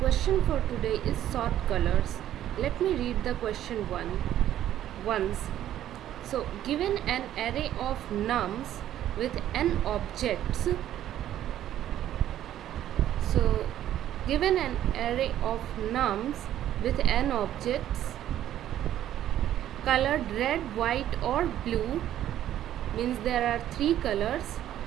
for today is sort colors. Let me read the question once. So, given an array of nums with n objects, so given an array of nums with n objects colored red, white or blue, means there are three colors.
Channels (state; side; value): quieter; left; 11.9 dB